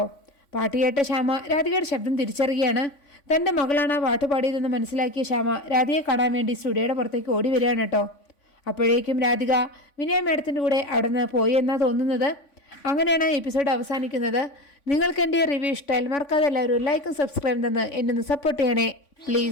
പാട്ട് കേട്ട ശ്യാമ രാധികയുടെ ശബ്ദം തിരിച്ചറിയുകയാണ്. തൻ്റെ മകളാണ് ആ പാട്ട് പാടിയതെന്ന് മനസ്സിലാക്കിയ ശ്യാമ രാധികയെ കാണാൻ വേണ്ടി സ്റ്റുഡിയോയുടെ പുറത്തേക്ക് ഓടി വരികയാണ് കേട്ടോ. അപ്പോഴേക്കും രാധിക വിനയ മേഡത്തിൻ്റെ കൂടെ അവിടെ നിന്ന് പോയി എന്നാണ് തോന്നുന്നത്. അങ്ങനെയാണ് ആ എപ്പിസോഡ് അവസാനിക്കുന്നത്. നിങ്ങൾക്ക് എൻ്റെ റിവ്യൂ ഇഷ്ടമായാൽ മറക്കാതെ എല്ലാവരും ലൈക്കും സബ്സ്ക്രൈബും തന്ന് എന്നെ ഒന്ന് സപ്പോർട്ട് ചെയ്യണേ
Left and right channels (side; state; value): right; late; 3.5 ms